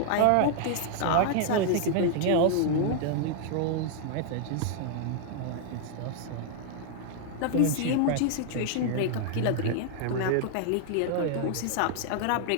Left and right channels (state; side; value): different; both; correlation 0.00